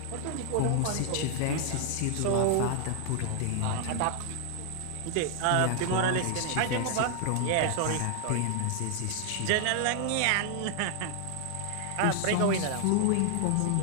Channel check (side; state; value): both; different; correlation 0.00